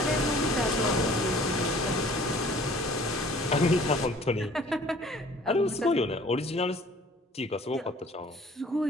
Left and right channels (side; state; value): both; normal; correlation 0.52